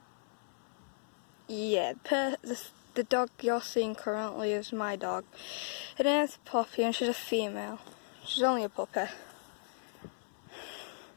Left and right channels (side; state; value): right; silent; 54 dB below the other